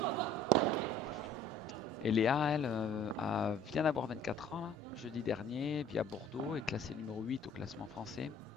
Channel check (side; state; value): both; normal; correlation 0.53